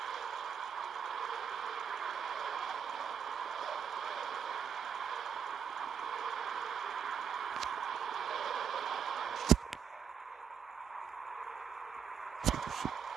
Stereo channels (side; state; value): left; quieter; 7.6 dB